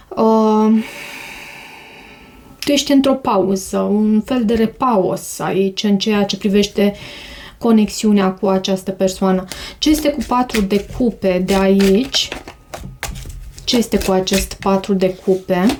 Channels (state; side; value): identical; both; correlation 1.00